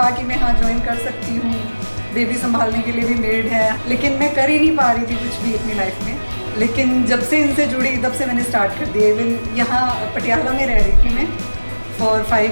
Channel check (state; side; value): inverted; both; correlation -1.00